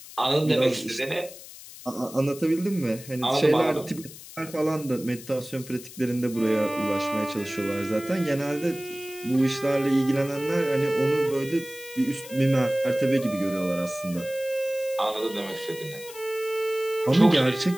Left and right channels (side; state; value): left; noise; hiss, 16 dB below the sound